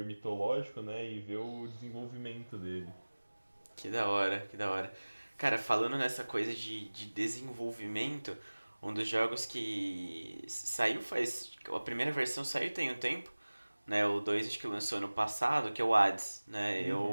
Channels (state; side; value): inverted; both; correlation -1.00